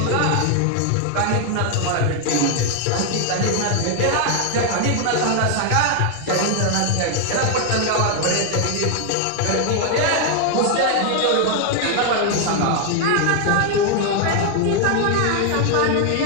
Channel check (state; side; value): different; both; correlation 0.00